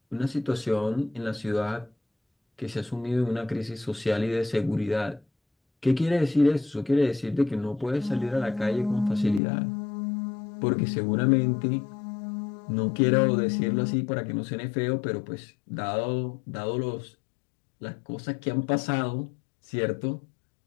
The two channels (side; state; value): right; drops out; at 9.4 s